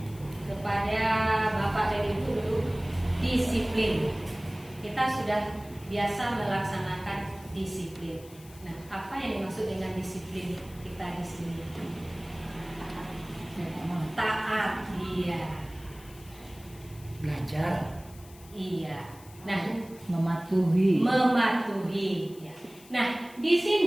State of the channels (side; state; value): left; noise; hiss, 22 dB below the sound